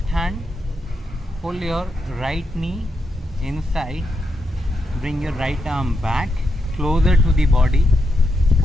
hand pull your right knee inside, bring your right arm back closer to the body,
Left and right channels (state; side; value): normal; both; correlation 0.83